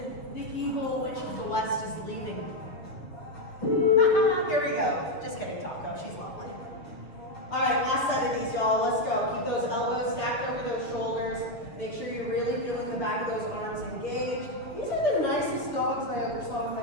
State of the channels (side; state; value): right; late; 6.5 ms